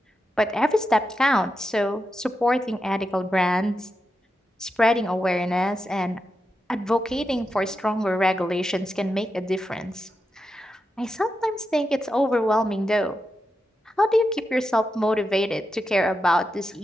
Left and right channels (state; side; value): normal; both; correlation 0.88